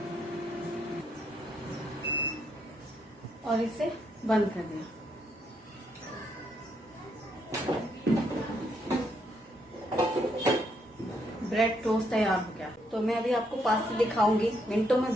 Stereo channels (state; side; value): normal; both; correlation 0.75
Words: और इसे बंद कर दिया। ब्रेड टोस्ट तैयार हो गया। तो मैं अभी आपको पास से दिखाऊंगी। मिनटों में